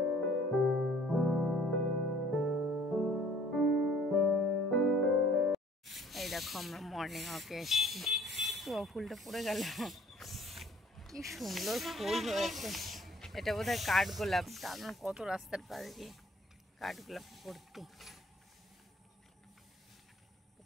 এই দেখো আমরা মর্নিং ওয়াকে এসেছি, তো ফুলটা পড়ে গেল, কি সুন্দর ফুল হয়েছে। এটা বোধহয় কাঠগোলাপ, তার কত রাস্তার পাশ দিয়ে কাঠগোলাপ ভর্তি।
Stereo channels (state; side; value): normal; both; correlation 0.56